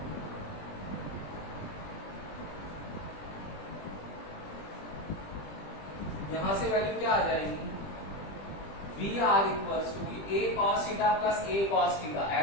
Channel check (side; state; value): right; late; 20 ms